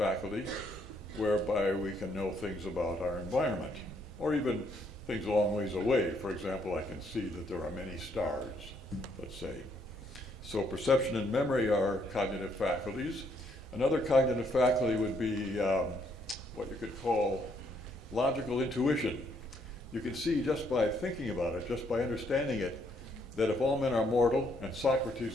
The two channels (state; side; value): normal; both; correlation 0.71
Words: whereby we can know things about our environment, or even things a long ways away. For example, I can see that there are many stars, let's say. So perception and memory are cognitive faculties. Another cognitive faculty would be what you could call logical intuition. You can see just by thinking about it, just by understanding it, that if all men are mortal and